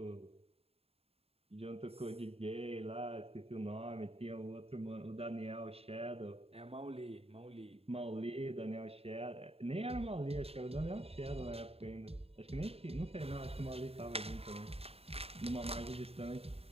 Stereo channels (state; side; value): late; left; 0.29 ms